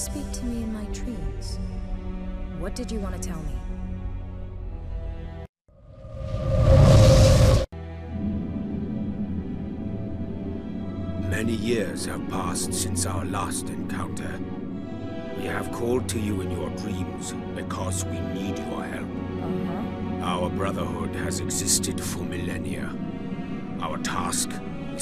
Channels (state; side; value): identical; both; correlation 1.00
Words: to me in my dreams? What did you want to tell me? Many years have passed since our last encounter. We have called to you in your dreams because we need your help. Our brotherhood has existed for millennia. Our task